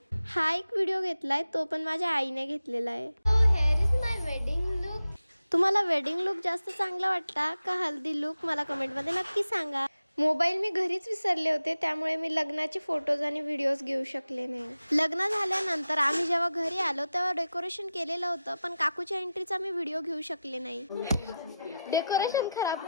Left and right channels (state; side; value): inverted; both; correlation -0.91